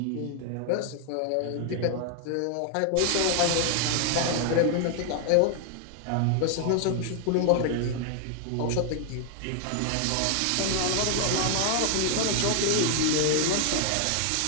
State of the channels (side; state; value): both; different; correlation 0.00